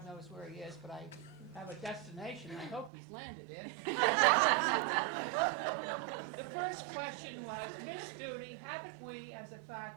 knows where he is, but I have a destination I hope he's landed in. The first question was, Miss Studi, haven't we as a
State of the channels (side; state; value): left; drops out; at 2.9 s